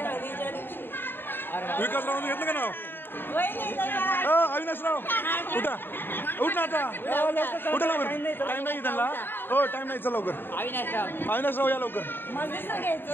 हळदीच्या दिवशी. विकासरावांनी घेतलं का नाव. अविनाशराव उठा उठ ना आता. उठा लवकर. टाइम नाही त्यांना. हो टाइम नाही. चल लवकर. अविनाशराव या लवकर.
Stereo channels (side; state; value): right; late; 0.098 ms